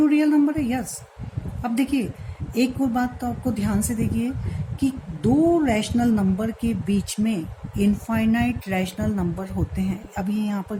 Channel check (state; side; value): identical; both; correlation 1.00